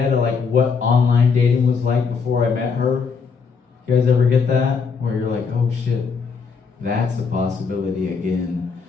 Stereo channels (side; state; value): right; quieter; 5.4 dB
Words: of like what online dating was like before I met her. You guys ever get that? Where you're like, oh shit, that's a possibility again.